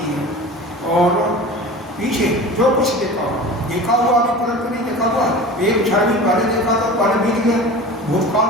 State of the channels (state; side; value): normal; both; correlation 0.36